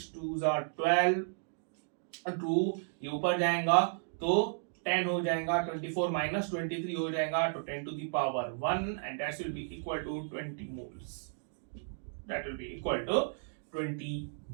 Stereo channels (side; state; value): left; silent; digital silence